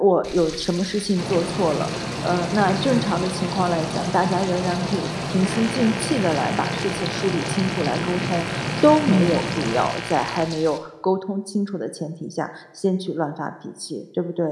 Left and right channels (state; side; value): identical; both; correlation 1.00